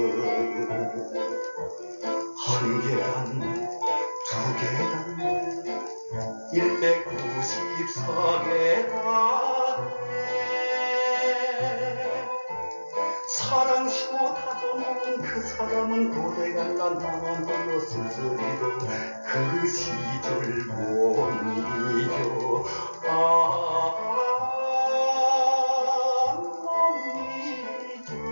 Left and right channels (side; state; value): both; inverted; correlation -1.00